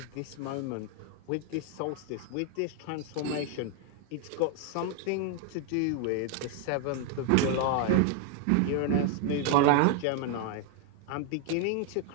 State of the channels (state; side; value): different; both; correlation 0.00